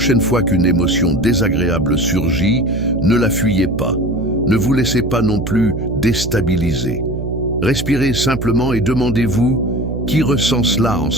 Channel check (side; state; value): right; noise; hum, 5 dB below the sound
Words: fois qu'une émotion désagréable surgit, ne la fuyez pas. Ne vous laissez pas non plus déstabiliser. Respirez simplement et demandez-vous qui ressent cela en